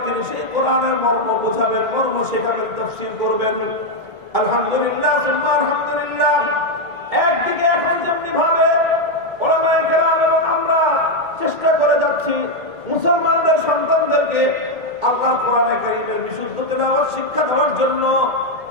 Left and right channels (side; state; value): left; late; 1.7 ms